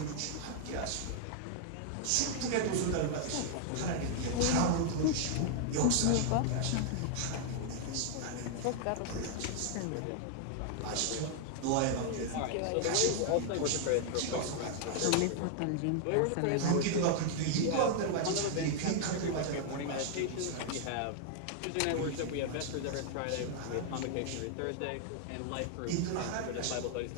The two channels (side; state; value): both; different; correlation 0.00